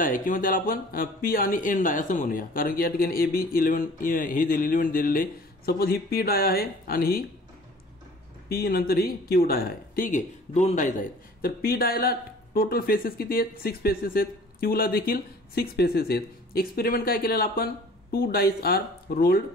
आहे, किंवा त्याला आपण पी आणि एन डाय असं म्हणूया, कारण की या ठिकाणी ए बी 11 हे एलिमेंट दिलेले. सपोज ही पी डाय आहे आणि ही पी नंतर ही क्यू डाय आहे. ठीक आहे, 2 डायज आहेत. तर पी डायला टोटल फेसेस किती आहेत? 6 फेसेस आहेत. क्यूला देखील 6 फेसेस आहेत. एक्सपेरिमेंट काय केलेलं आपण? 2 डायस आर रोल्ड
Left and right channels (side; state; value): both; normal; correlation 0.49